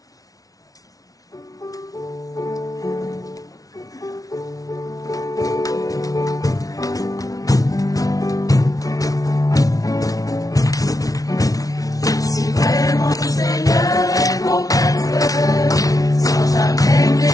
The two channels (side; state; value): right; late; 0.18 ms